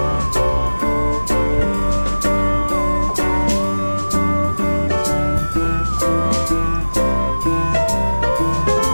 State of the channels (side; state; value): both; inverted; correlation -1.00